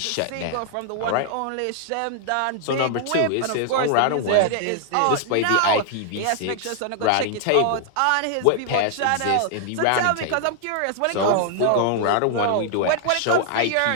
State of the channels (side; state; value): both; different; correlation -0.01